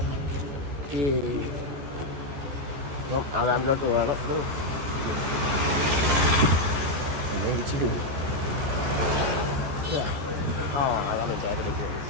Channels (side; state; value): left; late; 14 ms